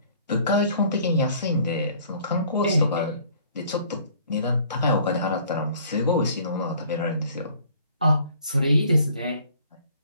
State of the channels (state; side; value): inverted; both; correlation -0.55